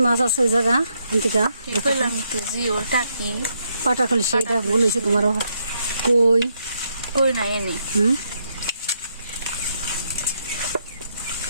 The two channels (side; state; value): both; inverted; correlation -0.77